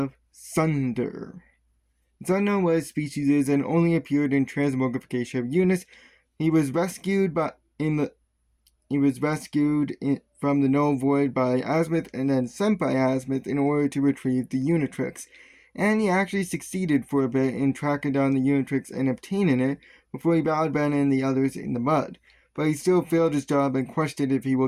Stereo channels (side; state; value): both; identical; correlation 1.00